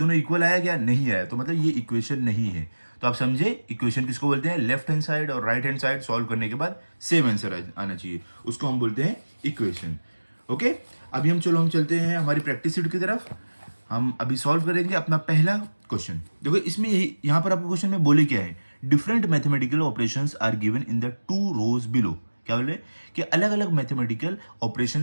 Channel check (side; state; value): both; inverted; correlation -1.00